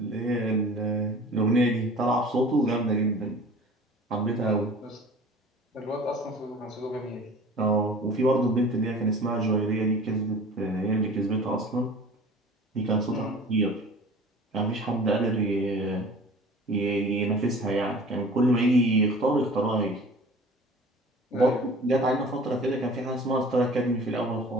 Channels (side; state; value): both; normal; correlation 0.44